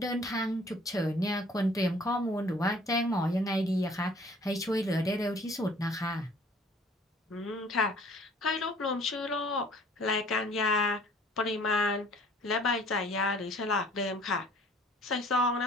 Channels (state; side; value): normal; both; correlation 0.54